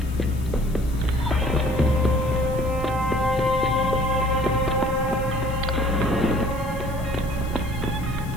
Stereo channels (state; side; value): noise; left; hiss, 21 dB below the sound